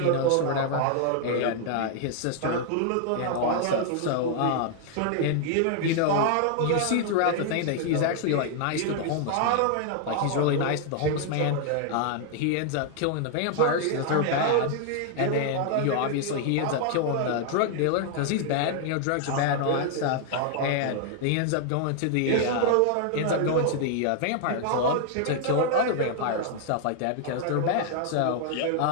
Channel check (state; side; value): different; both; correlation 0.00